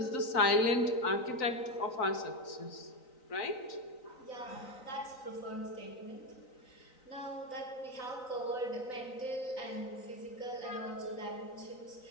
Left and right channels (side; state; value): right; late; 3.9 ms